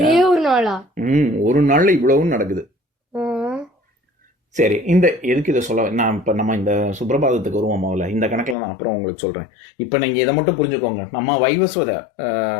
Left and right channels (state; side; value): drops out; right; at 8.6 s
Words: ஒரு நாள்ல இவ்வளவும் நடக்குது. சரி, எதுக்கு இதை சொல்ல நான் இப்ப நம்ம இந்த சுப்ரபாதத்துக்கு வருவோம். முதல்ல இந்த கணக்குல நான் அப்புறம் உங்களுக்கு சொல்றேன். இப்ப நீங்க இதை மட்டும் புரிஞ்சுக்கோங்க. நம்ம வைவஸ்வத